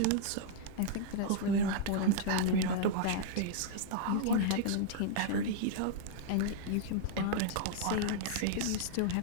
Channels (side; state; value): both; different; correlation -0.01